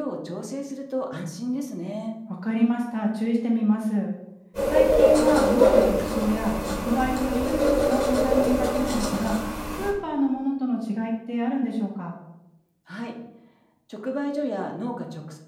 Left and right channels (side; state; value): both; identical; correlation 1.00